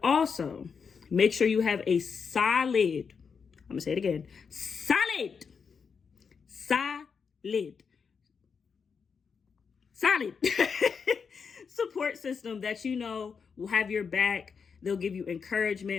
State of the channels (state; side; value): quieter; right; 5.9 dB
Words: also, make sure you have a solid, I'm going to say it again, solid support system that will have your back. They'll give you